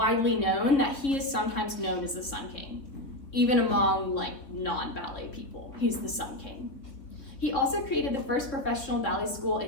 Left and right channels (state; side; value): late; right; 3.6 ms